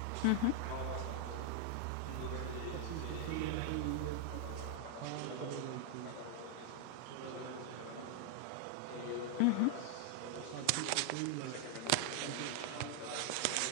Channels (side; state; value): both; different; correlation 0.00